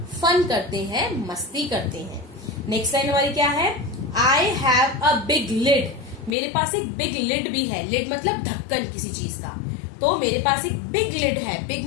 फन करते हैं, मस्ती करते हैं। नेक्स्ट लाइन हमारी क्या है, I have a big lid. मेरे पास एक बिग लिड भी है, लिड मतलब ढक्कन किसी चीज का, तो मेरे पास एक बिग लिड है, बिग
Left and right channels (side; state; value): right; drops out; at 6.3 s